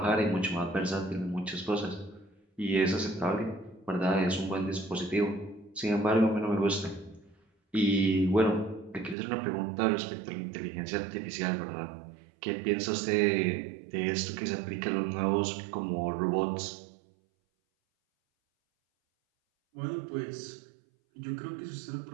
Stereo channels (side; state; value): left; drops out; at 9.2 s